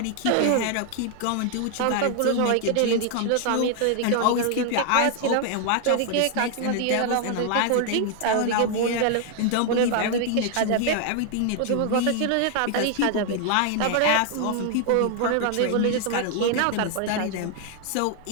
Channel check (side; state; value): both; different; correlation 0.00